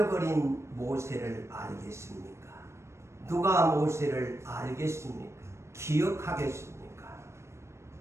버린 모세를 알겠습니까? 누가 모세를 알겠습니까? 기억하겠습니까?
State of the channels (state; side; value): late; left; 0.13 ms